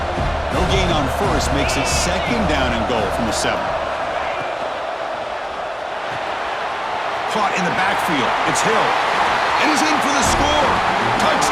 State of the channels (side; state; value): both; identical; correlation 1.00